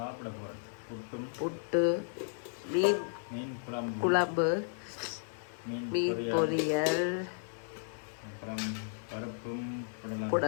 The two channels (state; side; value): silent; right; digital silence